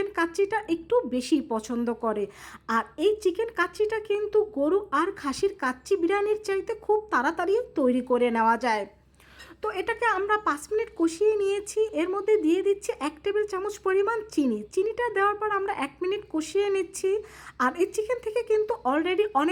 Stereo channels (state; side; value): identical; both; correlation 1.00